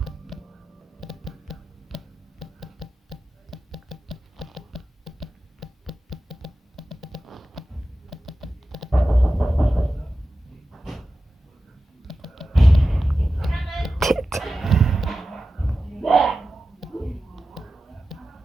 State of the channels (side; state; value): both; normal; correlation 0.93